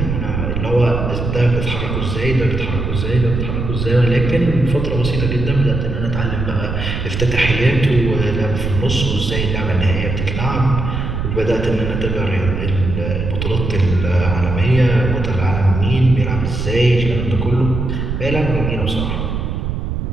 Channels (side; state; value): right; noise; rumble, 3 dB below the sound